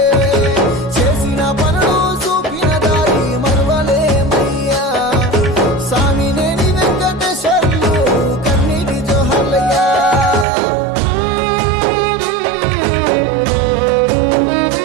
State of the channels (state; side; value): drops out; left; at 10.5 s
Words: చేసిన పనులు చూపిన దారి మరువలేమయ్యా స్వామినేని వెంకటేశ్వర్లు కన్నీటి జోహార్లయ్యా